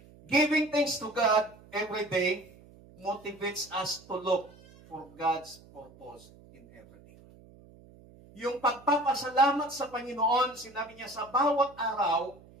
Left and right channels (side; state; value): right; noise; hum, 23 dB below the sound